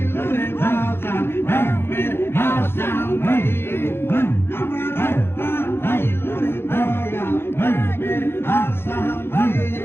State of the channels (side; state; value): right; late; 0.11 ms